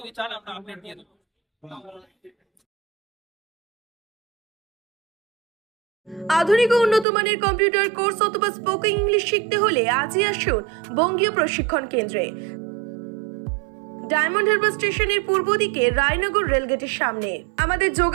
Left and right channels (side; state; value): left; drops out; at 7.1 s